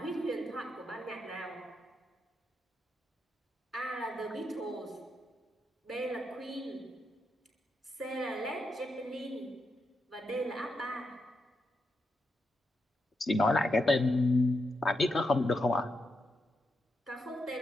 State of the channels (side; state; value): both; normal; correlation 0.84